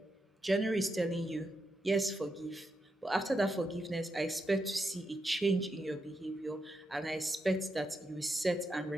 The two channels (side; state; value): both; normal; correlation 0.84